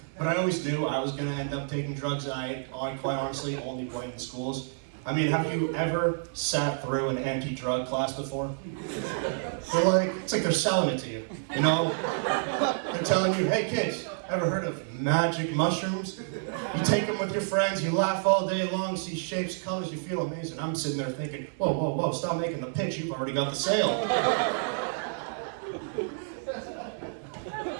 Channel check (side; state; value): left; silent; digital silence